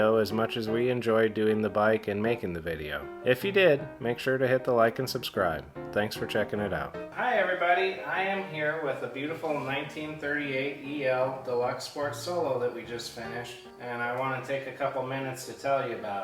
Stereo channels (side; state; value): both; identical; correlation 1.00